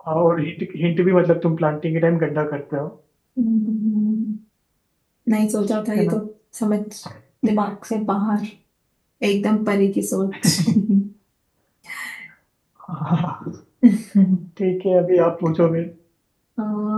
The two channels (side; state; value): both; identical; correlation 1.00